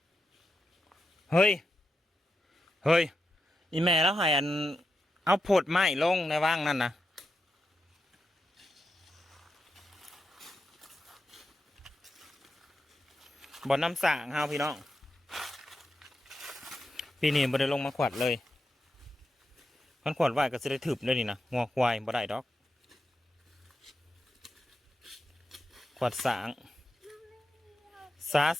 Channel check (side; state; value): both; normal; correlation 0.87